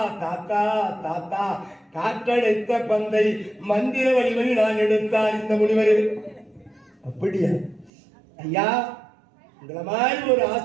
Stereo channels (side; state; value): left; drops out; at 7.9 s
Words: தாத்தா தாத்தா, காற்றடைத்த பந்தை மந்திர வலிமை நான் எடுத்தார் இந்த முனிவர். அப்படியா ஐயா, உங்களை மாதிரி ஒரு